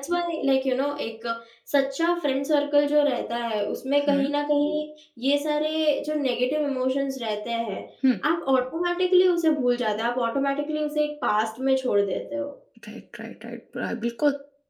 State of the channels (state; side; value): identical; both; correlation 1.00